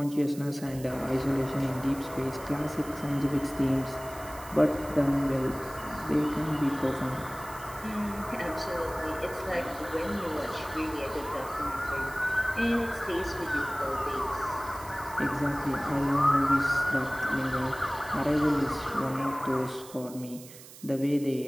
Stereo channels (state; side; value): noise; right; hiss, 17 dB below the sound